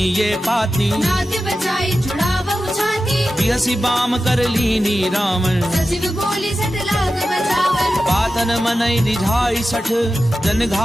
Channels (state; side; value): normal; both; correlation 0.93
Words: ये पाती, नाथ बचाई जुड़ा बहु छाती। बिहसी बाम कर लीनी रावण, सचिव बोली सट लाग बचावन। पातन मनई निझाई सठ, जन